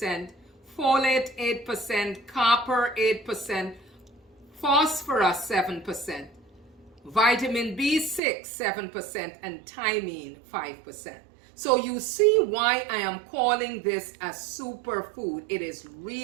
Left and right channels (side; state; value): left; drops out; at 8.2 s